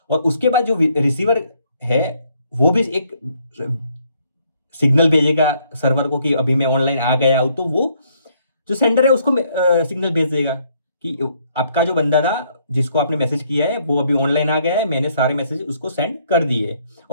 और उसके बाद जो रिसीवर है वो भी एक सिग्नल भेजेगा सर्वर को कि अभी मैं ऑनलाइन आ गया हूं। तो वो जो सेंडर है उसको सिग्नल भेज देगा कि आपका जो बंदा था जिसको आपने मैसेज किया है वो अभी ऑनलाइन आ गया है, मैंने सारे मैसेज उसको सेंड कर दिए।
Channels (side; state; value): both; inverted; correlation -0.68